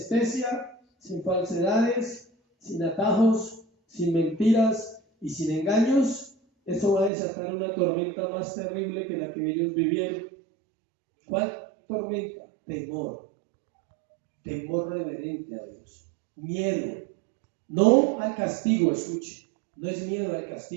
sin falsedades, sin atajos, sin mentiras y sin engaños. Eso va a desatar una tormenta más terrible que la que ellos vivieron. ¿Cuál tormenta? Temor. Temor reverente a Dios. Miedo. No al castigo, escuche. No es miedo al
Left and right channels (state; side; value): drops out; left; at 7.1 s